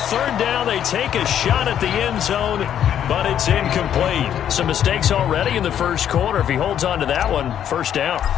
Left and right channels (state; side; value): quieter; right; 9.8 dB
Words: 3rd down, they take a shot at the end zone, but it's incomplete. Some mistakes already in the first quarter. If he holds on to that one, 1st down.